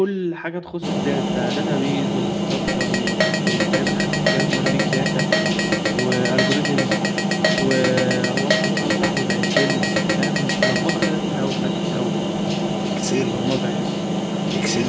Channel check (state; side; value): identical; both; correlation 1.00